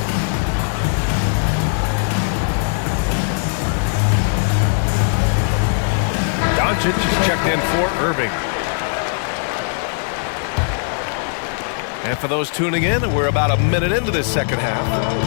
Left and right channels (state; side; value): silent; right; 58 dB below the other